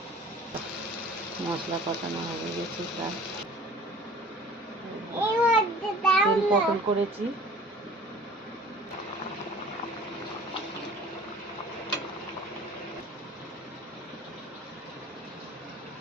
মশলা কষানো হয়ে গেছে, প্রায় তেল পটল করেছি।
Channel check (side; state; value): both; normal; correlation 0.47